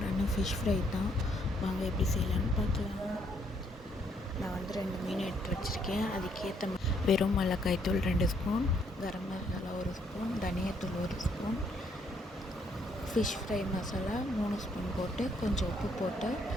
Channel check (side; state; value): both; normal; correlation 0.70